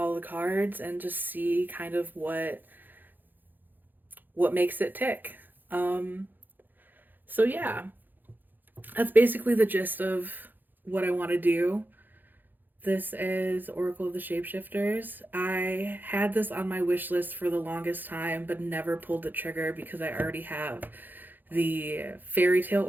the cards and just see kind of what makes it tick. Um, so yeah, that's basically the gist of what I want to do. This is Oracle of the Shapeshifters. I had this on my wish list for the longest time, but never pulled the trigger because I already have the Fairy Tale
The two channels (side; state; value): left; late; 0.088 ms